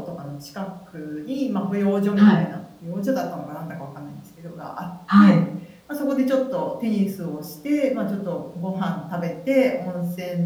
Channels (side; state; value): both; identical; correlation 1.00